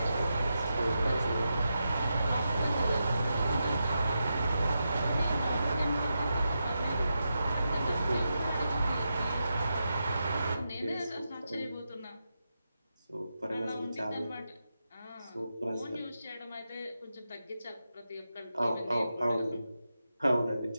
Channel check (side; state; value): both; inverted; correlation -0.88